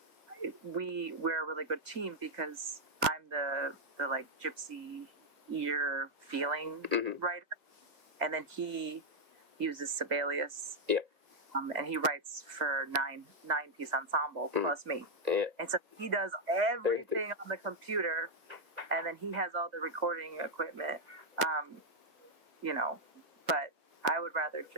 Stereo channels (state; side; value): late; left; 2.1 ms